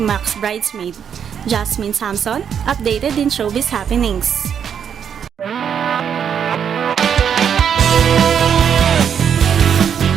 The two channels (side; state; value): left; quieter; 8.0 dB